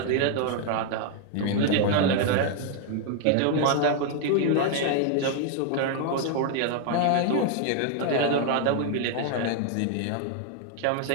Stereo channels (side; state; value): both; different; correlation 0.00